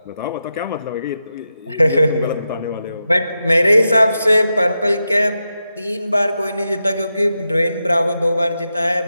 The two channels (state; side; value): inverted; both; correlation -0.88